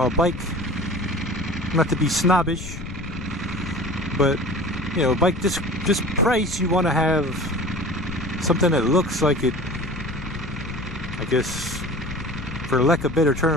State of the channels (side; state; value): left; noise; rumble, 9 dB below the sound